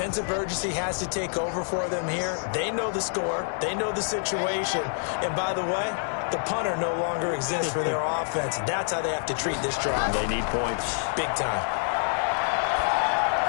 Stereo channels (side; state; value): right; silent; digital silence